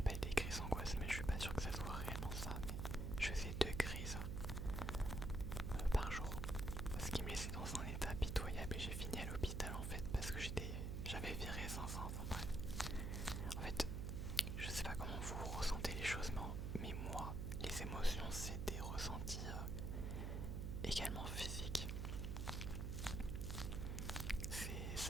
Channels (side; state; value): right; noise; hum, 1 dB below the sound